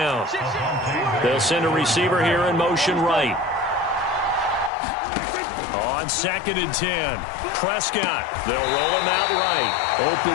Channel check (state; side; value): drops out; right; at 4.7 s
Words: They'll send a receiver here in motion right. On 2nd and 10, Prescott. They'll roll him out right.